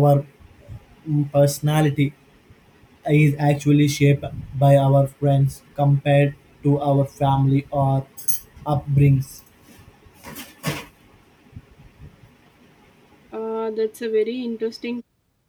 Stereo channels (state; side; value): identical; both; correlation 1.00